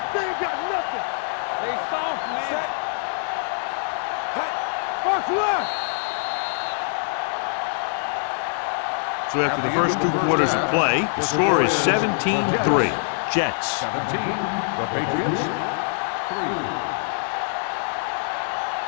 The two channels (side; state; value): right; silent; 62 dB below the other